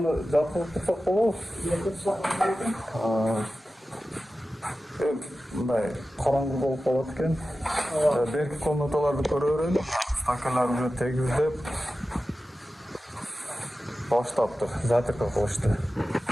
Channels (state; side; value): normal; both; correlation 0.94